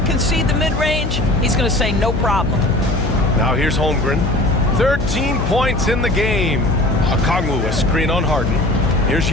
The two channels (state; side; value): noise; left; hum, 2 dB below the sound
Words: concede the mid-range? He's going to say no problem. Now here's Holmgren. 13 points in the game. Okongwu, a screen on Harden. Here's